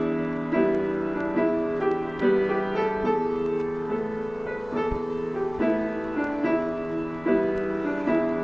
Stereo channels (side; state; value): left; noise; rumble, 20 dB below the sound